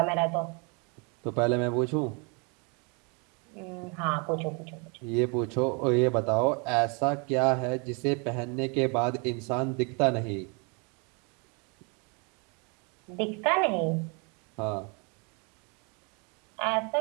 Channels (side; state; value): left; quieter; 33.6 dB